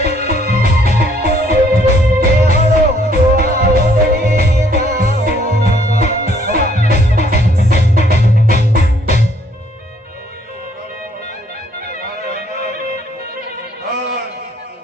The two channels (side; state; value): both; normal; correlation 0.64